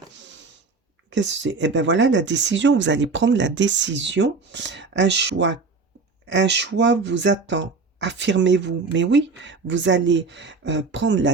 Qu'est-ce que c'est? Eh bien voilà, la décision, vous allez prendre la décision. Un choix vous attend. Affirmez-vous. Mais oui, vous allez prendre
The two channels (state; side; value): quieter; left; 4.4 dB